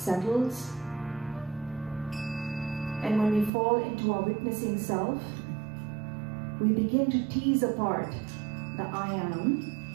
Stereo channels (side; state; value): left; drops out; at 3.5 s